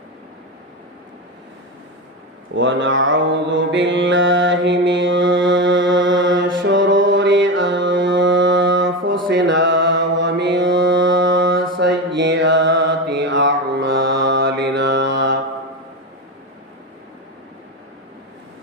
ونعوذ باللہ من شرور انفسنا ومن سیئات اعمالنا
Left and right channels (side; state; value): both; normal; correlation 0.18